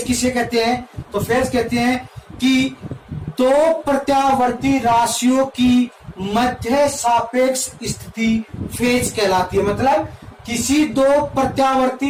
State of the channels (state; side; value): identical; both; correlation 1.00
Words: किसे कहते हैं, तो फेज कहते हैं कि दो प्रत्यावर्ती राशियों की मध्य सापेक्ष स्थिति फेज कहलाती है। मतलब किसी दो